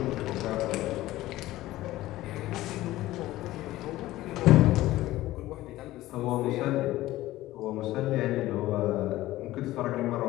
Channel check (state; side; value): quieter; right; 16.3 dB